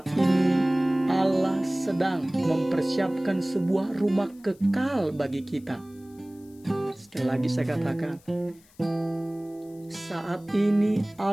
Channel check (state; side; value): noise; left; hiss, 29 dB below the sound